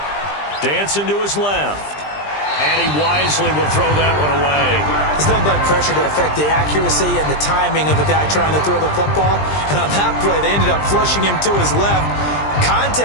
Dancing to his left. And he wisely will throw that one away. There's no blood pressure to affect the accuracy and the timing of a guy trying to throw the football. And on that play, they ended up flushing him to his left,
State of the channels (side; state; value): right; late; 20 ms